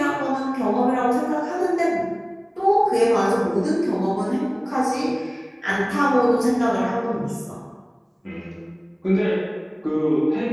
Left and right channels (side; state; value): both; identical; correlation 1.00